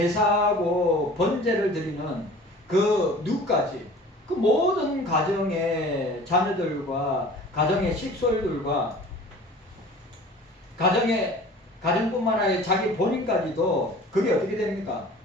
번제를 드리는 그 누까지 그 모든 가정의 자녀들과 가정의 식솔들과 가정뿐만 아니라 자기 본인까지도 그게 어떻게 됩니까?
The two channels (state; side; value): normal; both; correlation 0.44